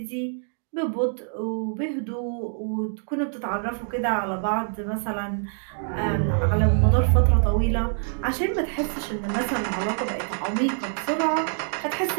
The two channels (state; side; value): silent; left; 61 dB below the other